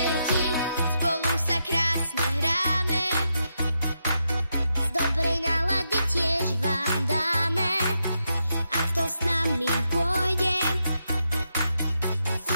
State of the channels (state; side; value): inverted; both; correlation -0.83